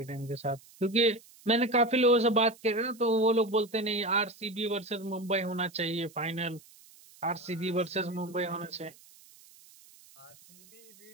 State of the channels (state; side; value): noise; right; hiss, 24 dB below the sound